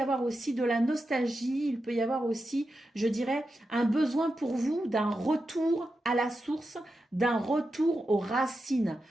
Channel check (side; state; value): both; normal; correlation 0.89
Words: aussi de la nostalgie, il peut y avoir aussi, je dirais, un besoin pour vous d'un retour à la source, d'un retour aux racines,